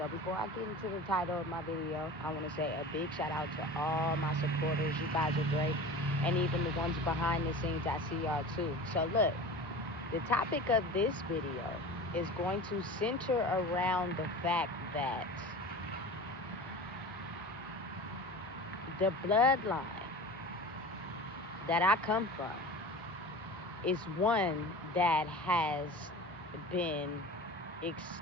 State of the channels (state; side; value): normal; both; correlation 0.35